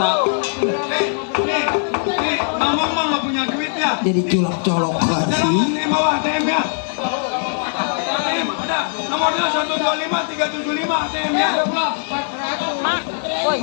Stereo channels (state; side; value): silent; right; 66 dB below the other